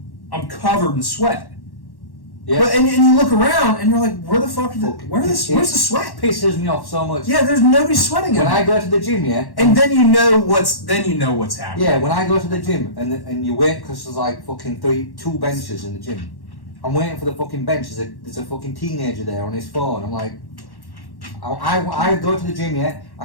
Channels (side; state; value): right; late; 1.1 ms